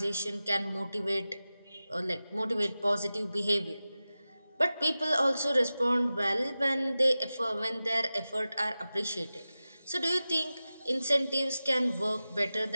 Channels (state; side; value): inverted; both; correlation -0.95